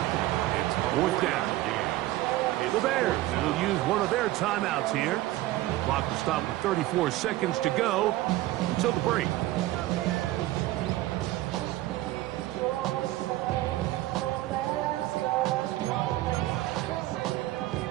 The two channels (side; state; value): left; quieter; 16.7 dB